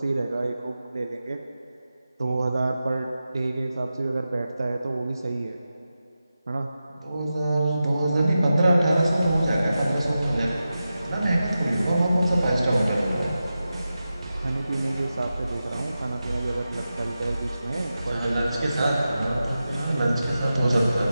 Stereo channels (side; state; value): both; inverted; correlation -0.92